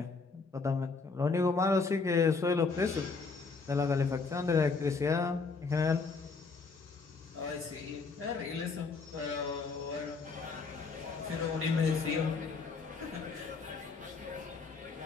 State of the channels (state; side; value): quieter; right; 4.5 dB